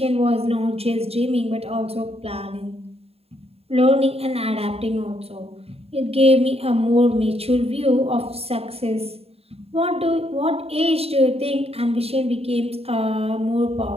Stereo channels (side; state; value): left; late; 0.29 ms